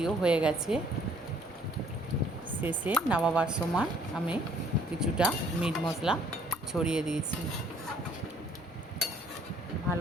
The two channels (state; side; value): normal; both; correlation 0.61